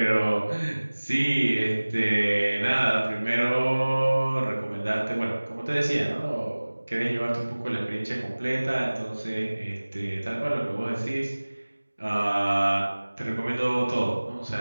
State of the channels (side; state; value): both; inverted; correlation -1.00